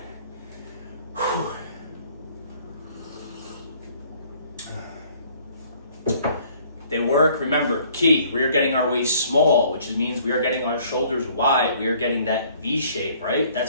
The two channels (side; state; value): both; inverted; correlation -0.58